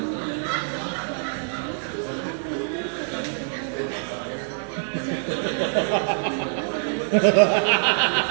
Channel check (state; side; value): silent; left; digital silence